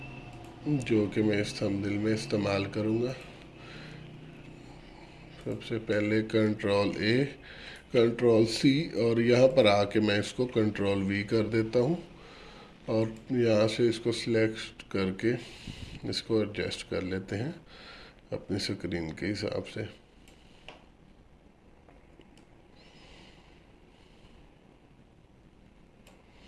जो कि मैं इस थंबनेल में इस्तेमाल करूँगा। सबसे पहले Ctrl+A, Ctrl+C, और यहाँ पर आके मैं इसको Ctrl+V कर देता हूँ, और यहाँ से इसको सिलेक्ट करके इसको एडजस्ट कर लेते हैं अपनी स्क्रीन के हिसाब से।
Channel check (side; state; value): both; identical; correlation 1.00